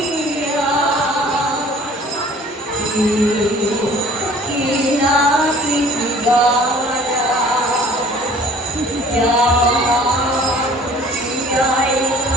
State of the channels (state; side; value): normal; both; correlation 0.51